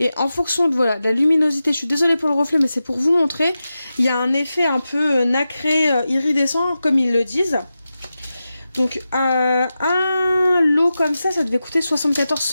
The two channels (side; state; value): both; inverted; correlation -0.92